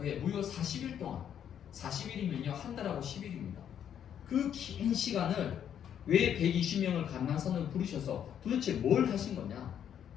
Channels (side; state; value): right; quieter; 9.2 dB